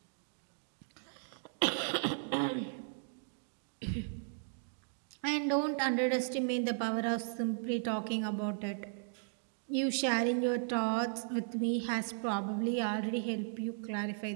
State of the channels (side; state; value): left; silent; digital silence